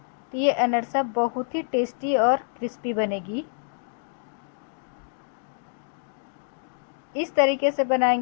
तो ये अनरसा बहुत ही टेस्टी और क्रिस्पी बनेगी। इस तरीके से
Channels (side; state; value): right; silent; digital silence